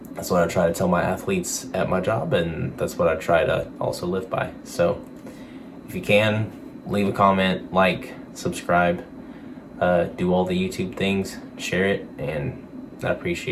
that's what I try to tell my athletes at my job, and that's what I try to also live by. So if you can, leave a comment, subscribe, do all the YouTube things, share it, and I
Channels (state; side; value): identical; both; correlation 1.00